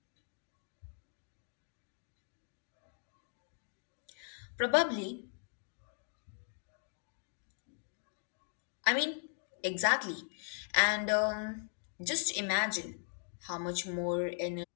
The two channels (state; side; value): silent; right; digital silence